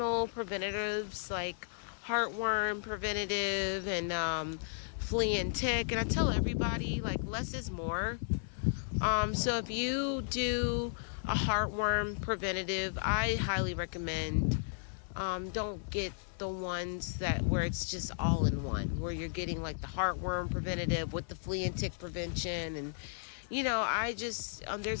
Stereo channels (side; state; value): right; silent; 55 dB below the other